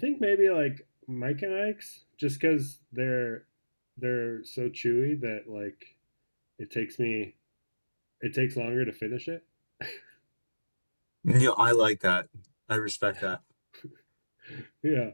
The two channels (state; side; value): inverted; both; correlation -1.00